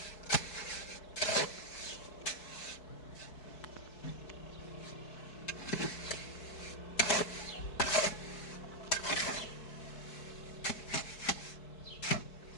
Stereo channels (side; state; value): right; late; 4.6 ms